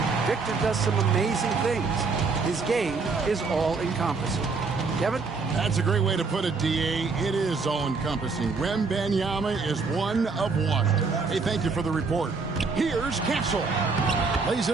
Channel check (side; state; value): left; quieter; 4.4 dB